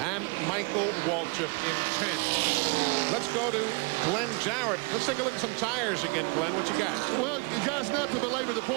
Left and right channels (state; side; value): quieter; left; 31.3 dB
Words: Michael Waltrip in 10th. Let's go to Glenn Jarrett. Let's take a look at some tires again, Glenn. What you got? Well, guys, not to belabor the